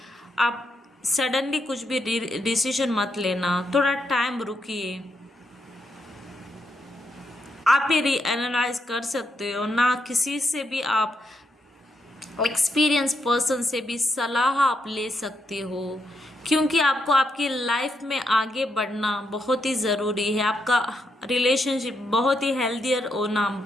आप सडनली कुछ भी डिसीजन मत लेना, थोड़ा टाइम रुकिए। आप ये रीएनालाइज कर सकते हो ना, किसी से भी आप एक्सपीरियंस पर्सन से भी सलाह आप ले सकते हो, क्योंकि आपको आपकी लाइफ में आगे बढ़ना बहुत ही ज़रूरी है। आपका रिलेशनशिप बहुत ही हेल्दियर होना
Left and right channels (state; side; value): normal; both; correlation 0.80